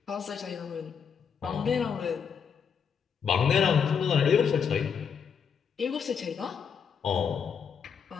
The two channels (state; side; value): quieter; right; 6.9 dB